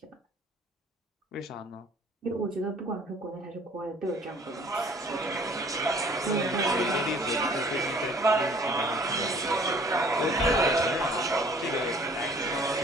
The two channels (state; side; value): normal; both; correlation 0.54